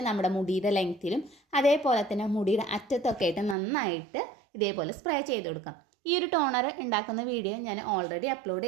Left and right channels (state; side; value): drops out; left; at 3.6 s